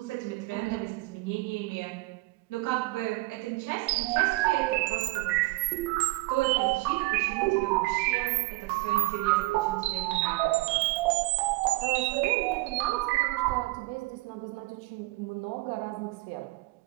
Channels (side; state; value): left; quieter; 22.4 dB